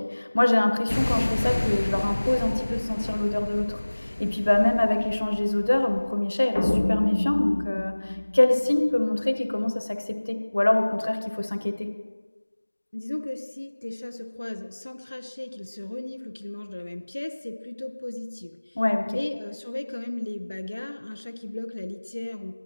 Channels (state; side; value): inverted; both; correlation -1.00